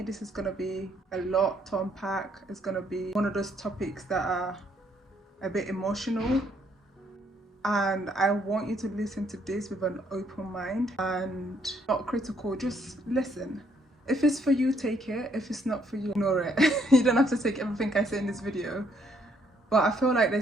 this is going to be a lot to unpack. It's going to be one of those topics that are a bit emotional, and I want you to listen to this with an open mind and not critical, just listen. If it's for you, take it. If it's not for you, ignore it. You don't have to take everything I say in this video. But I feel like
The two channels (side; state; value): both; normal; correlation 0.69